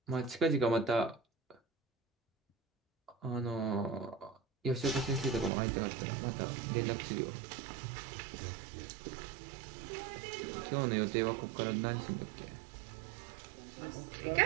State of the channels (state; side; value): drops out; left; at 5.5 s